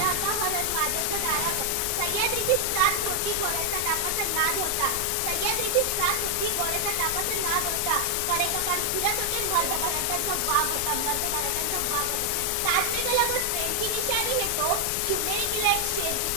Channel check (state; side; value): different; both; correlation 0.00